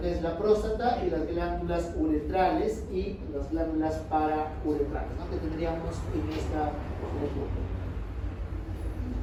que es la próstata y las glándulas uretrales y las glándulas parauretrales, ¿no? Que tendríamos en esta región.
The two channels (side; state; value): both; identical; correlation 1.00